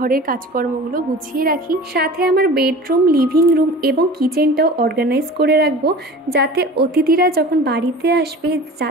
কাজকর্মগুলো গুছিয়ে রাখি, সাথে আমার বেডরুম, লিভিং রুম এবং কিচেনটাও অর্গানাইজ করে রাখবো, যাতে অতিথিরা যখন বাড়িতে আসবে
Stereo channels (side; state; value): both; normal; correlation 0.39